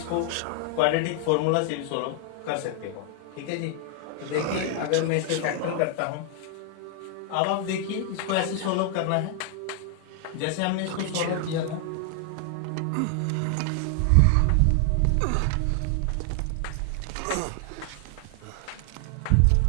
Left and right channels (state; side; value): different; both; correlation 0.00